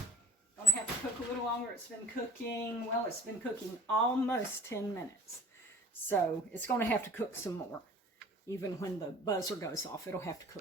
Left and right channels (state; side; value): normal; both; correlation 0.51